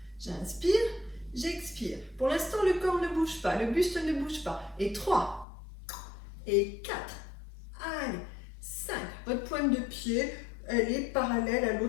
J'inspire, j'expire. Pour l'instant, le corps ne bouge pas, le buste ne bouge pas. Et 3, et 4, allez, 5. Votre pointe de pied, elle est parallèle à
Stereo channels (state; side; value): drops out; right; at 5.5 s